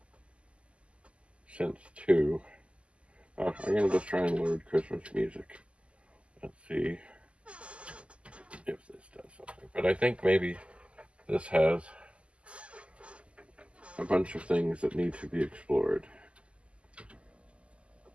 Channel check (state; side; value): late; left; 0.056 ms